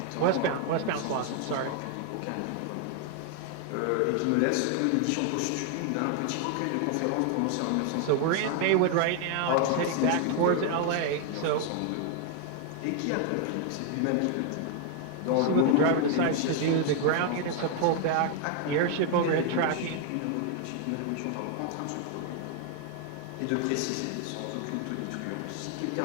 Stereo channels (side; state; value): both; different; correlation 0.00